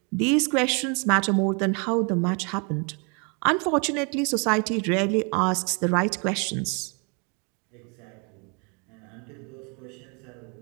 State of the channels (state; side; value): quieter; left; 34.5 dB